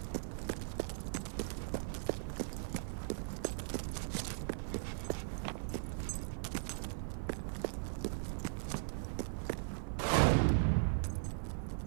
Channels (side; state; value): left; silent; 52 dB below the other